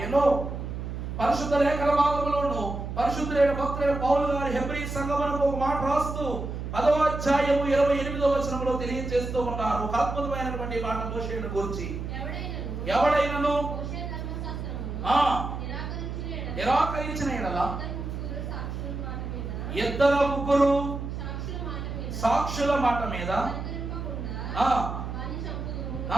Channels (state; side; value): noise; right; hum, 6 dB below the sound